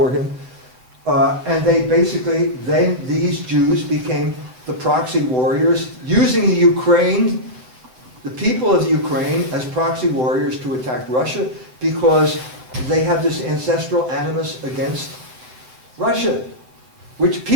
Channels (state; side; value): late; left; 8.0 ms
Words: him. And then these Jews became the proxy warriors, using the people of the Ukraine as proxy warriors to attack Russia because they have this ancestral animus against Russia, which